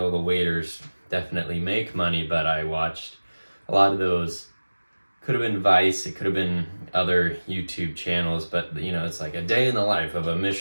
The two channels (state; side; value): inverted; both; correlation -1.00